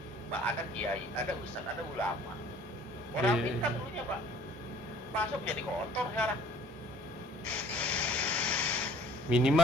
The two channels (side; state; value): both; normal; correlation 0.54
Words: Pak, ada kiai, ada ustaz, ada ulama. Orang pintar dulunya Pak, masuk jadi kotor sekarang.